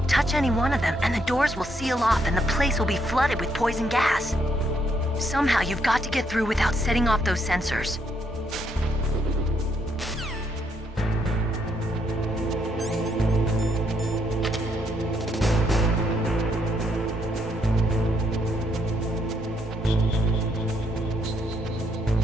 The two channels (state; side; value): normal; both; correlation 0.74